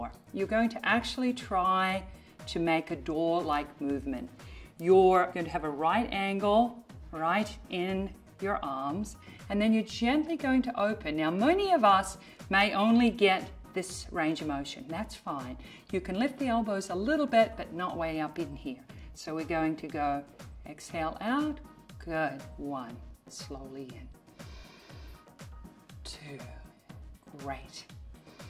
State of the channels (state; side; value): identical; both; correlation 1.00